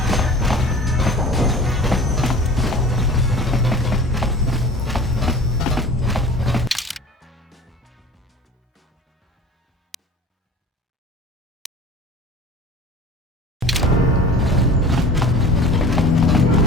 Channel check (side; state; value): both; normal; correlation 0.41